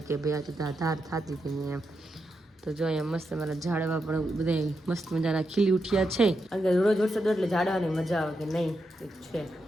કે ભાઈ આ ધાર થતી હતી નહીં એમ તો જો અહીંયા મસ્ત મારા ઝાડવા પણ બધા મસ્ત મજાના ખીલી ઉઠ્યા છે કારણ કે રોજ વરસાદ એટલે ઝાડવાની મજા આવે કે નહીં એક છે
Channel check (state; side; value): normal; both; correlation 0.85